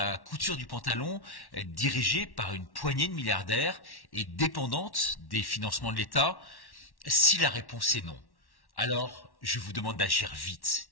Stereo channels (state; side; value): late; right; 1.1 ms